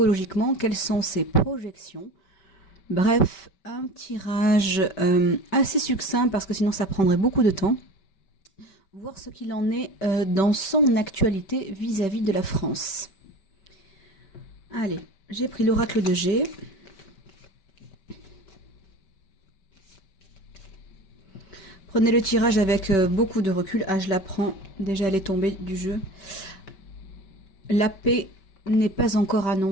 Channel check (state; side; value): late; right; 5.2 ms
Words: Quelles sont ses projections? Bref, un tirage assez succinct parce que sinon ça prendrait beaucoup de temps. Voir ce qu'il en est dans son actualité vis-à-vis de la France. Allez, j'ai pris l'oracle de G. Prenez le tirage avec beaucoup de recul. Ah, je la prends. Déjà, elle est tombée du jeu. La paix n'est pas encore